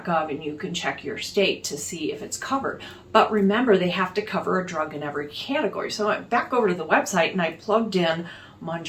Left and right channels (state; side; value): identical; both; correlation 1.00